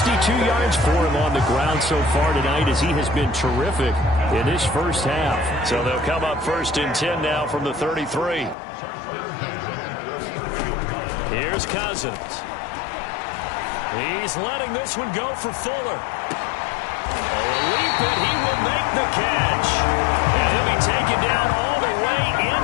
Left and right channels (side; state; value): right; drops out; at 8.6 s